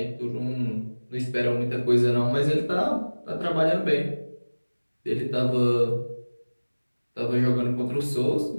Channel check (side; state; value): both; inverted; correlation -1.00